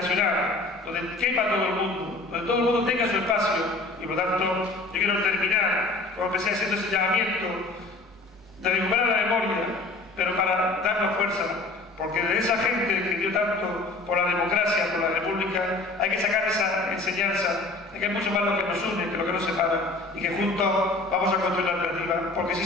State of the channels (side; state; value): right; quieter; 3.1 dB